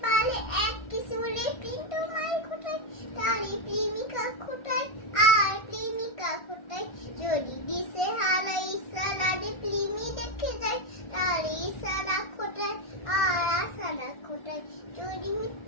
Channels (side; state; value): right; late; 1.4 ms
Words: পালে এক কিশোরে কিন্তু মাই কোথায়, তারি প্রেমিকা কোথায় আর প্রেমিকা কোথায়, যদি দিশে হারাই সালাদে প্রেমী দেখে যায়, তারি সারা কোথায় আর আসারা কোথায়, যদি